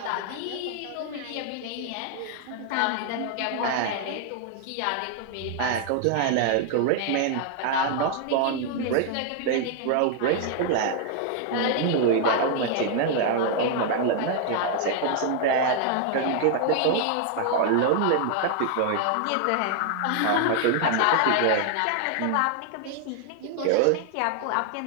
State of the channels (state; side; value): different; both; correlation 0.00